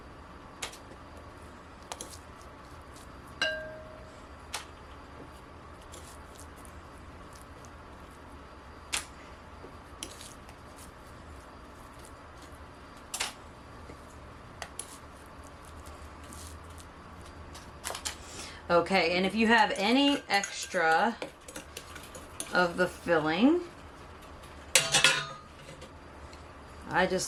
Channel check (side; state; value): both; identical; correlation 1.00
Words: Okay, and if you have any extra of the filling, I